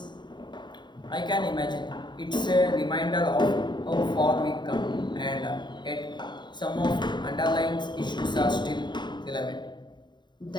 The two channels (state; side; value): late; right; 0.22 ms